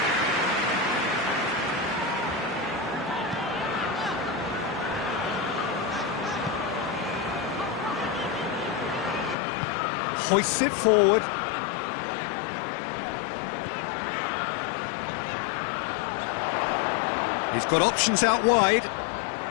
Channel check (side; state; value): right; drops out; at 9.3 s